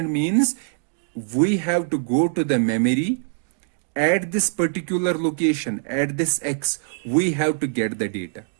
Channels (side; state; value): left; silent; digital silence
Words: means we have to go to the memory at this particular location, at this X, we have to get the data.